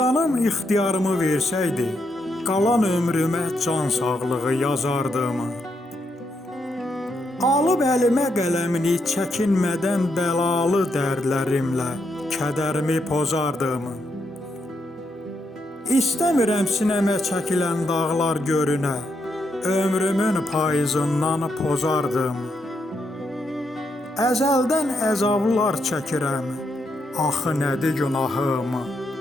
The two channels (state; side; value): normal; both; correlation 0.80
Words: ixtiyarımı versəydi, qalan ömrümə can sağlığı yazardım. Alıb əlimə qələmini çəkinmədən bəlalı dərdlərimlə kədərimi pozardım. İstəmirəm sinəmə çəkilən dağlar görünə, ömrümün payızından pozardım. Əzəldən əzablar çəkirəm, axı nədir günahım?